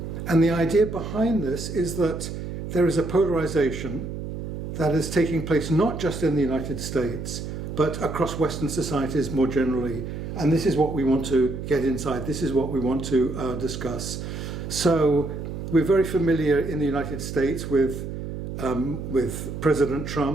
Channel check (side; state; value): right; noise; hum, 7 dB below the sound